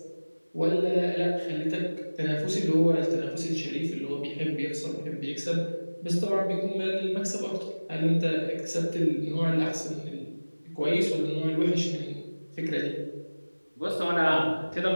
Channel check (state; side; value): inverted; both; correlation -1.00